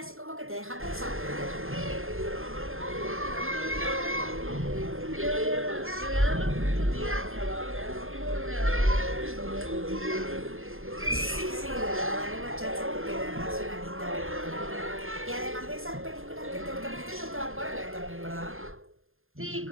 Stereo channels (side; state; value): left; late; 0.60 ms